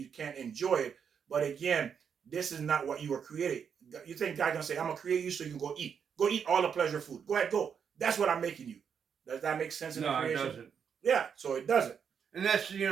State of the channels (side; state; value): left; quieter; 7.2 dB